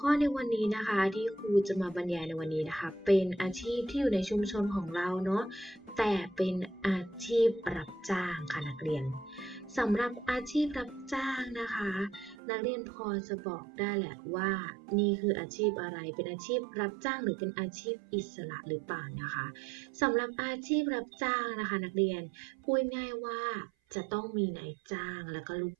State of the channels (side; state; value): left; drops out; at 12.4 s